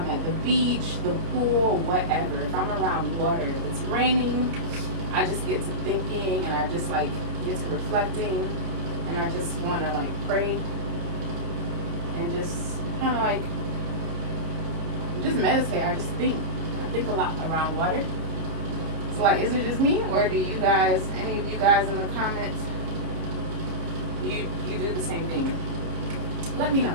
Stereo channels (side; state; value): left; late; 30 ms